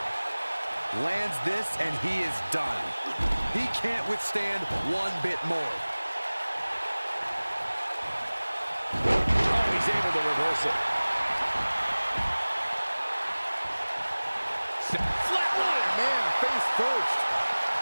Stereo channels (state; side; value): inverted; both; correlation -1.00